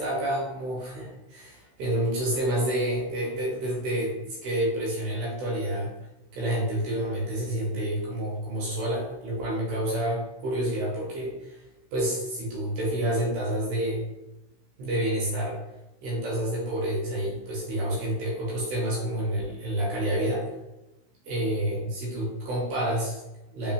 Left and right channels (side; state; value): left; late; 16 ms